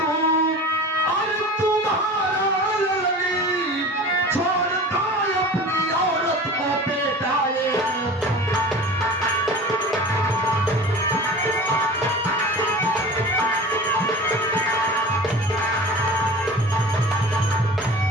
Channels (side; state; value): both; normal; correlation 0.37